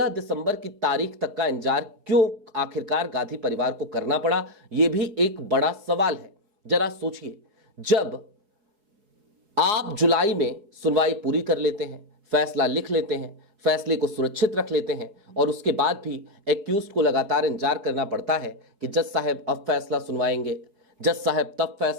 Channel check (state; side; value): late; left; 4.8 ms